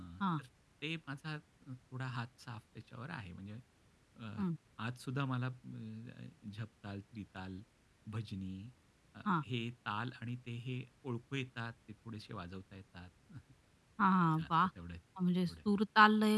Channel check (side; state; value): both; identical; correlation 1.00